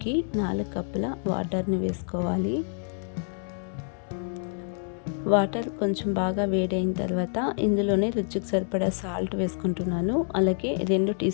4 కప్పుల వాటర్ని వేసుకోవాలి. వాటర్ కొంచెం బాగా వేడైన తర్వాత ఇందులోనే రుచికి సరిపడా సాల్ట్ వేసుకుంటున్నాను. అలాగే 2 టీ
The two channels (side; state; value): right; silent; 60 dB below the other